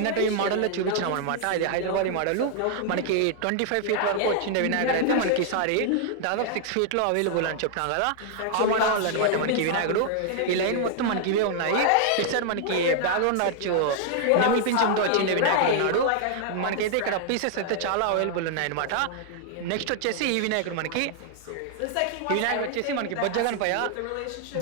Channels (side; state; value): both; different; correlation -0.01